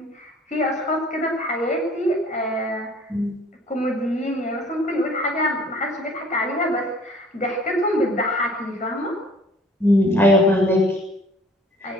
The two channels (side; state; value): both; normal; correlation 0.53